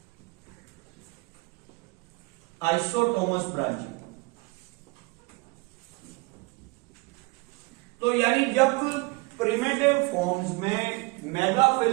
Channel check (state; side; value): quieter; left; 25.9 dB